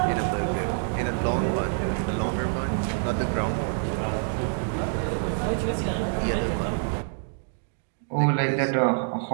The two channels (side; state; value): left; silent; digital silence